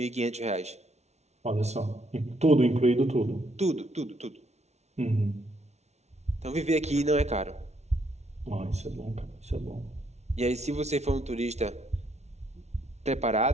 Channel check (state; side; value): late; left; 0.32 ms